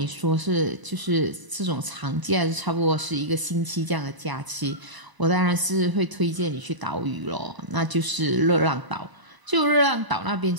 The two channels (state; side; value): late; left; 1.0 ms